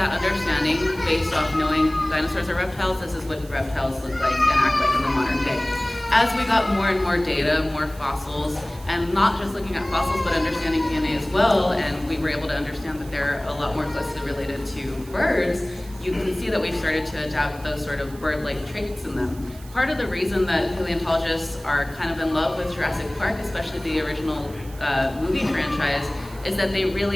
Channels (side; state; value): right; noise; hiss, 21 dB below the sound